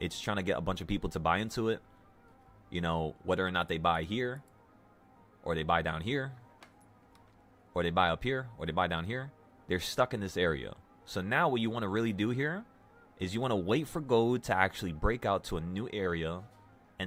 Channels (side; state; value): both; identical; correlation 1.00